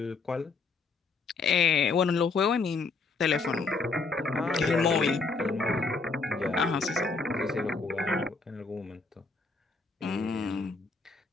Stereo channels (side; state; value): right; quieter; 4.1 dB